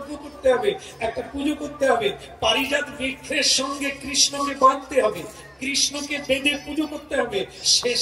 করতে হবে, একটা পুজো করতে হবে, পারিজাত বৃক্ষের সঙ্গে কৃষ্ণকে বাঁধতে হবে, কৃষ্ণকে বেঁধে পুজো করতে হবে,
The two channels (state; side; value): identical; both; correlation 1.00